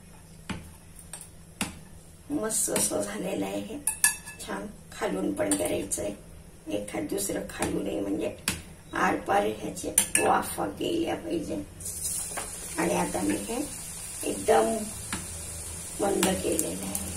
मस्त असं झालेलं आहे हे छान. खालून पण करायचंय, एखाद दुसरं खालून म्हणजे आरपार ह्याचे वाफा गेल्या पाहिजे. आणि आता मी हे एकदम मंद केलेलं आहे.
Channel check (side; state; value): both; identical; correlation 1.00